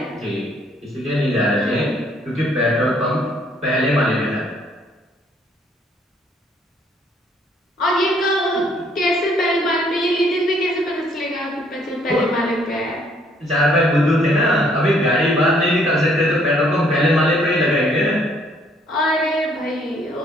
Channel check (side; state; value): both; normal; correlation 0.65